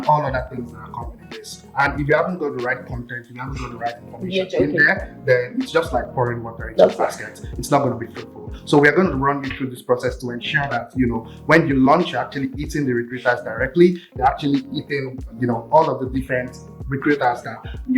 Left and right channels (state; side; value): identical; both; correlation 1.00